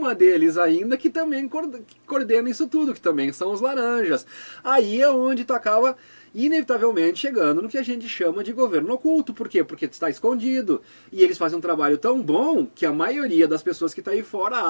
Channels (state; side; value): inverted; both; correlation -1.00